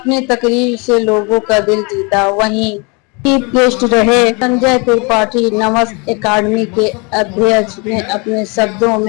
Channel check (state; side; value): quieter; right; 30.7 dB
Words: तकरीर से लोगों का दिल जीता। वहीं चीफ गेस्ट रहे संजय त्रिपाठी। नमस एकेडमी के अध्यक्ष ने अपने शब्दों